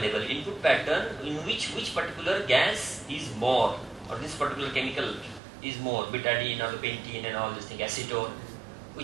input pattern in which particular gas is more, or this particular chemical is more, betadine or the pentene and all this thing, acetone,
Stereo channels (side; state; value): left; drops out; at 5.4 s